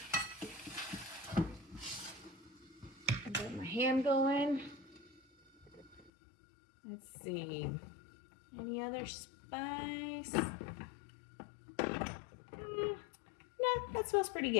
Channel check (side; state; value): right; drops out; at 6.1 s